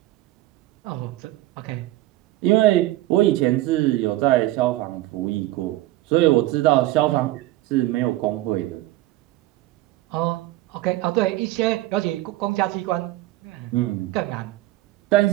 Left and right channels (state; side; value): quieter; left; 16.5 dB